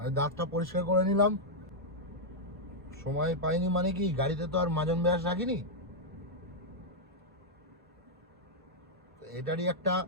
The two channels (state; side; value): normal; both; correlation -0.04